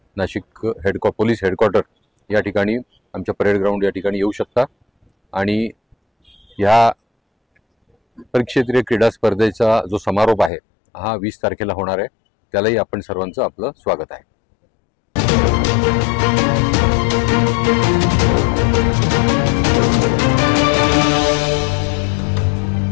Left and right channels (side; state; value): right; drops out; at 10.5 s